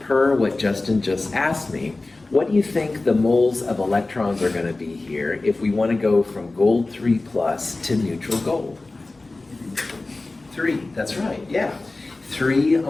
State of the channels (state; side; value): quieter; right; 3.2 dB